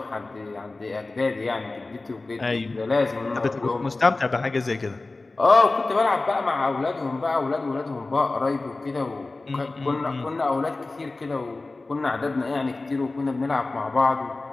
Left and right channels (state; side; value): quieter; right; 3.3 dB